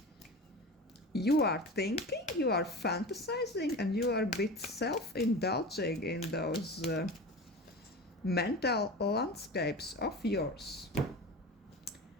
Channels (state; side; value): normal; both; correlation 0.31